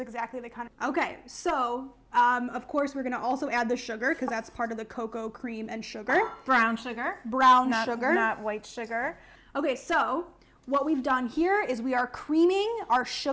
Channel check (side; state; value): both; identical; correlation 1.00